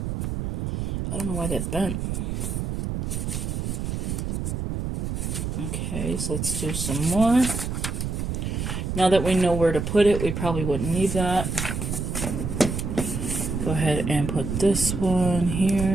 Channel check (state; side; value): noise; right; rumble, 3 dB below the sound